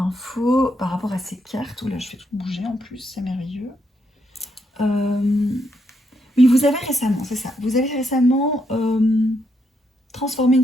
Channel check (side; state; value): both; normal; correlation 0.78